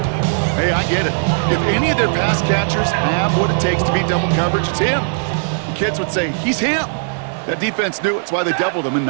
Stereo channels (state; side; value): silent; left; digital silence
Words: Hey, I get it. If any of their pass catchers have what it takes to beat double coverage, it's him. The kids would say, he's him. That defense knew it. It's why they doubled him and